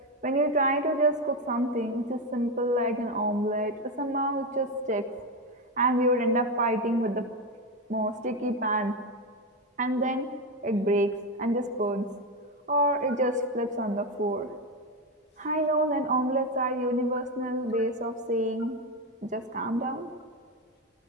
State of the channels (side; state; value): both; normal; correlation 0.12